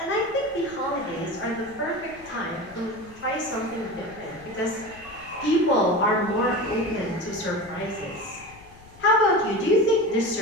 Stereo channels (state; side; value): noise; left; rumble, 22 dB below the sound